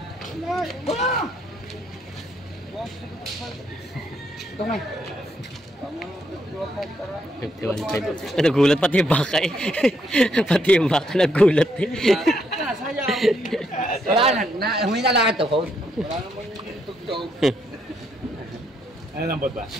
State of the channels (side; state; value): both; normal; correlation 0.75